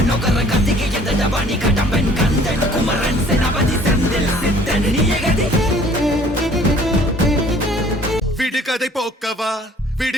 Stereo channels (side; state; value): both; normal; correlation 0.55